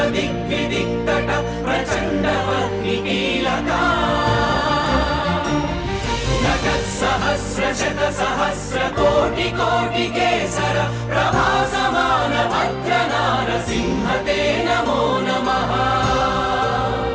प्रचण्डवह्निकीलका नटत्सहस्रशतसहस्रकोटिकोटिकेसर प्रभासमान भद्रनारसिंह ते नमो नमः।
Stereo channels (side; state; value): both; identical; correlation 1.00